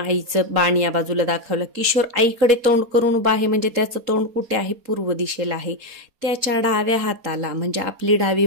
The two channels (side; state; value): left; late; 4.2 ms